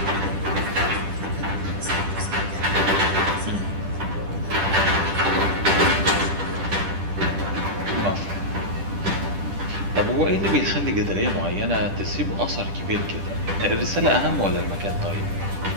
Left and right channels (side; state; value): left; late; 10 ms